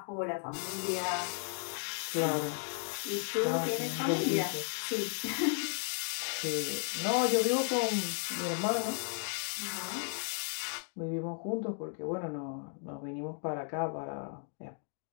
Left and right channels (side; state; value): right; silent; 55 dB below the other